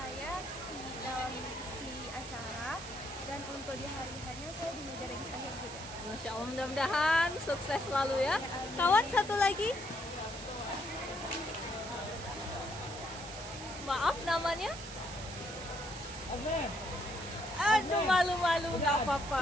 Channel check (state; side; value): noise; right; hiss, 12 dB below the sound